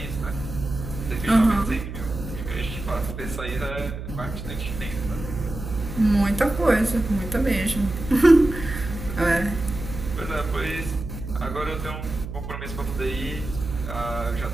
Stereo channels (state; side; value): noise; right; hum, 8 dB below the sound